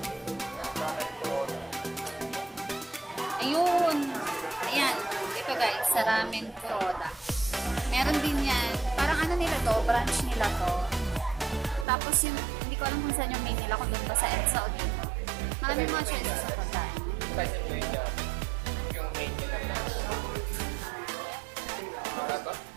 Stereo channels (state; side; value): drops out; left; at 11.9 s